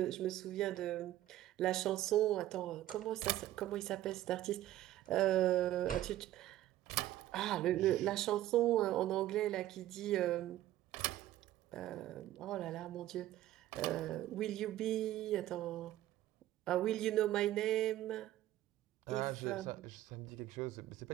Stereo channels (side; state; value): left; quieter; 14.1 dB